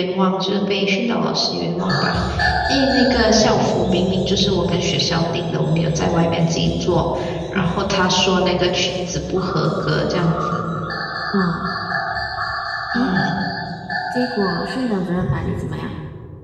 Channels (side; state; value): both; identical; correlation 1.00